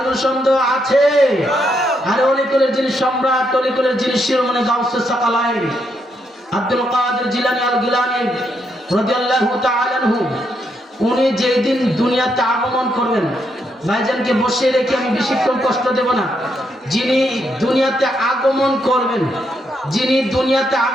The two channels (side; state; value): both; normal; correlation 0.78